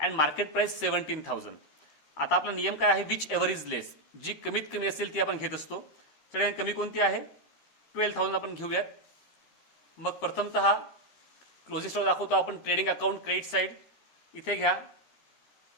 and market price 17,000. आता आपला नियम काय आहे, विच एव्हर इज लेस. जी कमीत कमी असेल ती आपण घेत असतो. सगळ्यात कमी कोणती आहे 12,000 आपण घेऊयात. मग प्रथमतः क्लोजिंग स्टॉक दाखवतो आपण. ट्रेडिंग अकाउंट क्रेडिट साइड इथे घ्या.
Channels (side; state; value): right; late; 13 ms